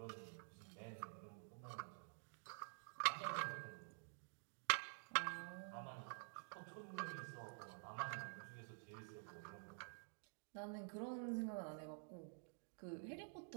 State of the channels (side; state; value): left; silent; digital silence